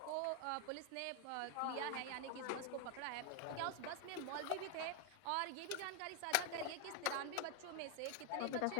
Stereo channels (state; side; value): different; both; correlation 0.00